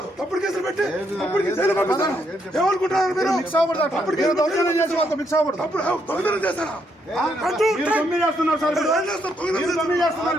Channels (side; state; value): both; normal; correlation 0.75